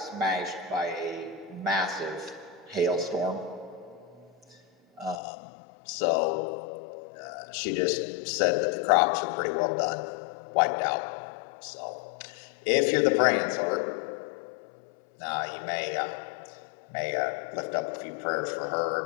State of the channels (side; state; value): right; drops out; at 5.2 s